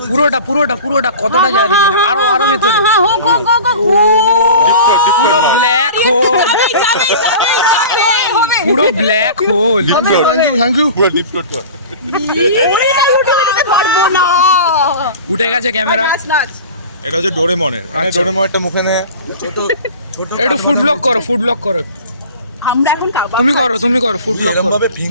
পুরোটা কতটা যায় দেখি, আরো ভেতরে পুরো ব্ল্যাক হোল, পুরো ব্ল্যাক হোল। Thank you. পুরো ডিপ টোট কর। উঠে গেছে ক্যামেরা। এটা হচ্ছে ডোরেমনের। ডোরেমনটা মুখে নে। একটু ফুড ব্লগ করো। আমরা এখন কাবাব তুমি করো ফুড ব্লগ করো। ভাবে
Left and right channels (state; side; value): inverted; both; correlation -0.38